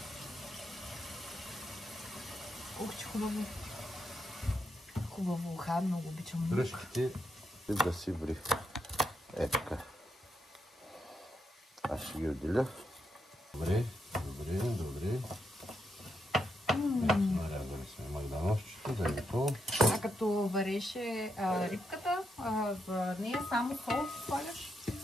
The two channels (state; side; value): normal; both; correlation 0.81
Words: Ух, че хубаво. Хубаво уха, много обичам лук. Дръжките и да си ври. Е така. Аз ще ги отделя. Добре. Нарязали сме магданозчето, да е готово. А като вареше рибката, в нея само сол слагаш?